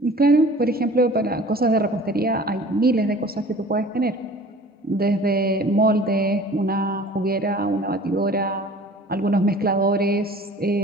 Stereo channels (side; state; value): both; normal; correlation 0.46